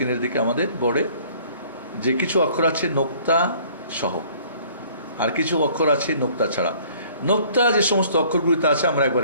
দিকে, আমাদের বোর্ডে যে কিছু অক্ষর আছে নোক্তা সহ, আর কিছু অক্ষর আছে নোক্তা ছাড়া। নোক্তা যে সমস্ত অক্ষরগুলিতে আছে আমরা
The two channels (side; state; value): both; inverted; correlation -0.55